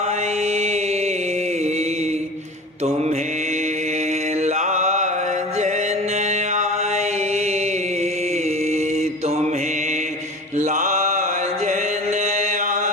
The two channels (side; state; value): both; normal; correlation 0.36